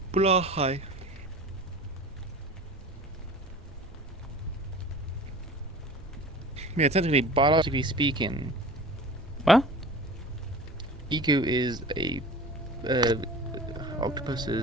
Blahai. Yeah, technically, biologically speaking. What? Iku is a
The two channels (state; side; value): normal; both; correlation 0.39